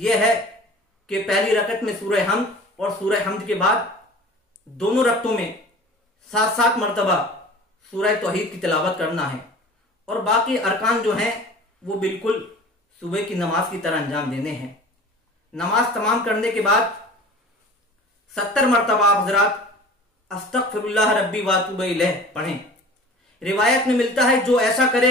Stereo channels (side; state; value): both; normal; correlation 0.42